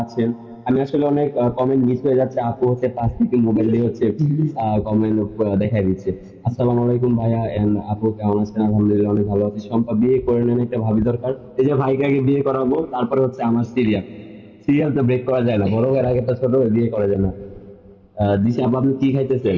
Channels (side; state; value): both; identical; correlation 1.00